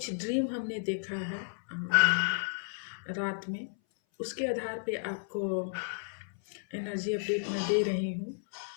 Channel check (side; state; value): right; silent; 56 dB below the other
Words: ड्रीम हमने देखा है रात में, उसके आधार पे आपको एनर्जी अपडेट मैं दे रही हूँ।